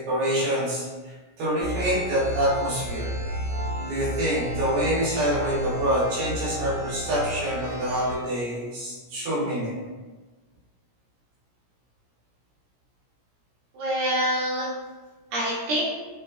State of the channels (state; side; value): late; left; 17 ms